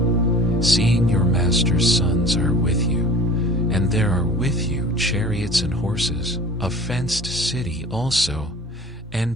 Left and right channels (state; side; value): normal; both; correlation 0.43